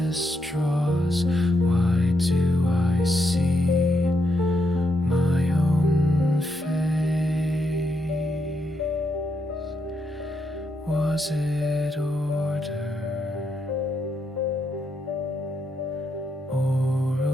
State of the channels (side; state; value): both; normal; correlation 0.80